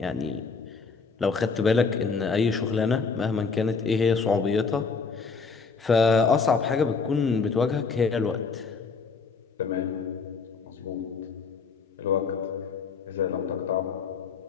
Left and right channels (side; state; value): right; quieter; 4.9 dB